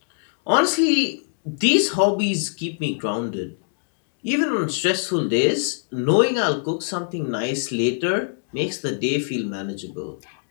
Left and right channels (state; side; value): silent; right; digital silence